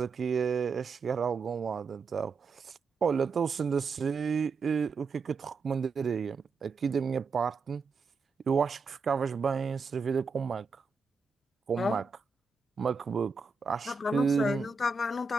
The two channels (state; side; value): quieter; left; 4.5 dB